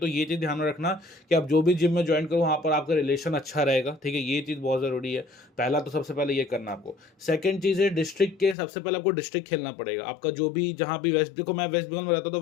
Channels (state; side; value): drops out; right; at 8.6 s